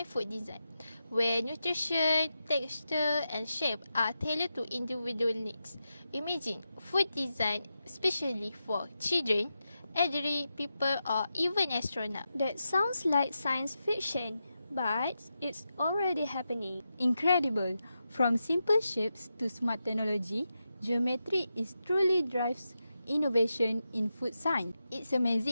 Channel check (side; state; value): both; inverted; correlation -0.88